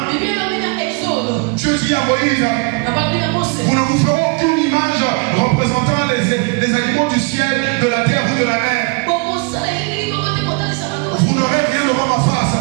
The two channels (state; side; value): quieter; left; 31.6 dB